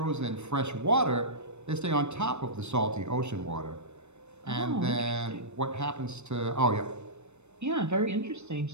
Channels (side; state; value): left; late; 0.82 ms